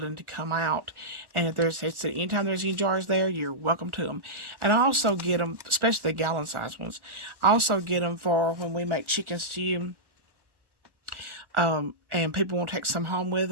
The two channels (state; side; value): late; left; 1.1 ms